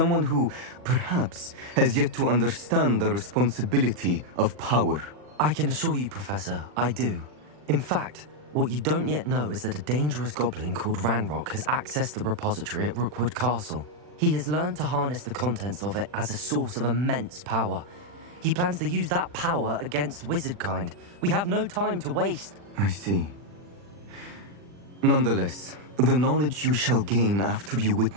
who, perhaps, has yet to understand the responsibility of power. I can assure you, Professor, I do. In fact, what you don't yet know is that a dangerous goblin called Ranrock has accessed the repository at Rookwood Castle. He has learned to harness the contents of it as a source of immense power. He plans to use that power against wizardkind. We have no time to waste. I see. Nonetheless, the knowledge you shall gain after you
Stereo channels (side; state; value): left; late; 40 ms